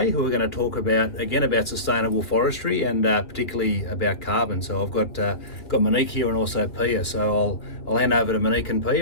who are going to talk about sustainable forestry and particularly about carbon. So I've got Monique here and also Pia. So I'll hand over to Monique and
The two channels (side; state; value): right; late; 2.8 ms